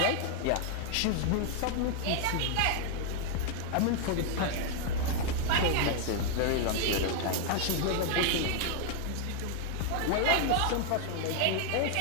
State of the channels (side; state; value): both; different; correlation 0.00